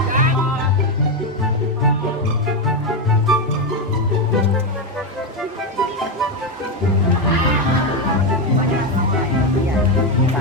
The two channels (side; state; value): both; normal; correlation 0.09